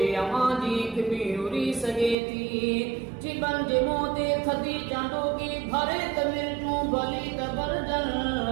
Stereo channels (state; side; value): drops out; left; at 2.1 s